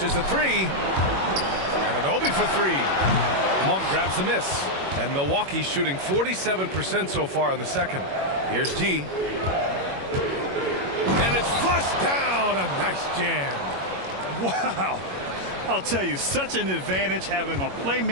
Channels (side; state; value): left; late; 21 ms